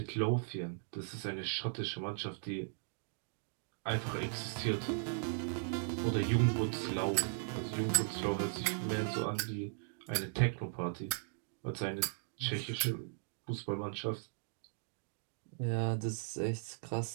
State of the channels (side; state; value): left; silent; digital silence